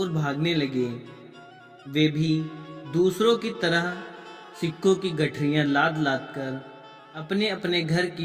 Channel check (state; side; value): identical; both; correlation 1.00